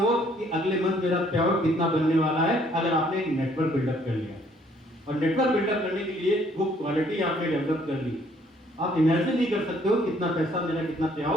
कि अगले मंथ मेरा पेआउट कितना बनने वाला है, अगर आपने एक नेटवर्क बिल्डअप कर लिया। और नेटवर्क बिल्डअप करने के लिए वो क्वालिटी आपने डेवलप कर ली, आप इमेजिन नहीं कर सकते हो कितना पैसा मेरा, कितना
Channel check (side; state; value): both; normal; correlation 0.63